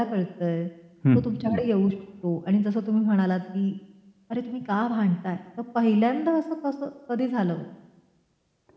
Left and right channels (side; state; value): both; identical; correlation 1.00